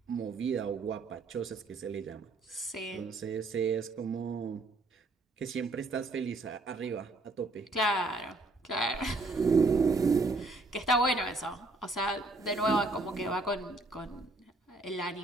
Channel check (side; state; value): left; quieter; 3.1 dB